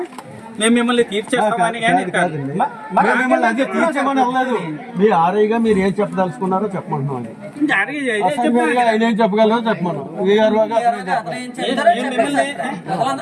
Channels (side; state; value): both; identical; correlation 1.00